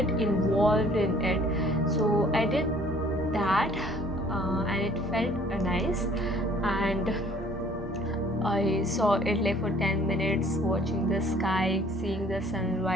involved in it. So I did that, and it felt nice. And I saw it like for 10 minutes, watching the sky, seeing the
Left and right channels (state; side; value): normal; both; correlation 0.56